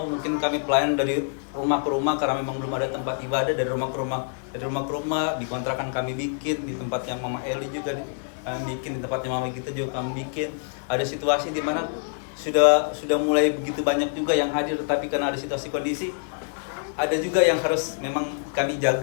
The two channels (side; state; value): right; silent; 61 dB below the other